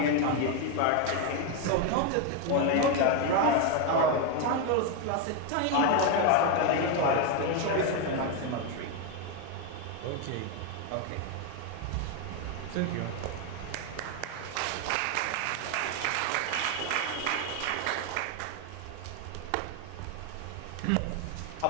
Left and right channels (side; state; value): both; different; correlation 0.01